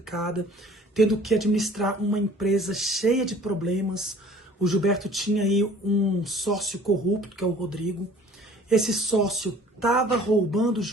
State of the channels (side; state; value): both; normal; correlation 0.51